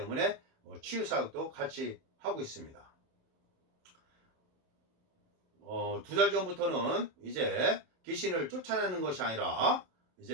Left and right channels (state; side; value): late; left; 27 ms